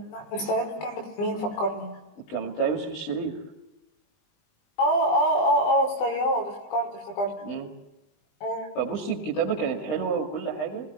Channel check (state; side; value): late; right; 20 ms